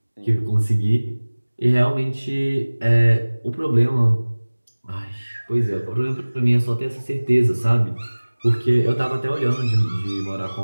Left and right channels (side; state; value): both; inverted; correlation -1.00